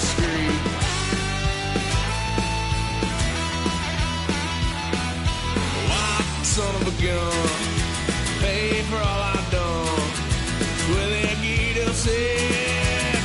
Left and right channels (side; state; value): both; identical; correlation 1.00